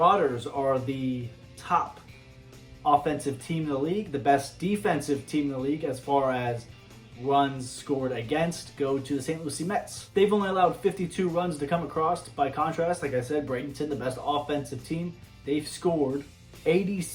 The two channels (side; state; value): both; identical; correlation 1.00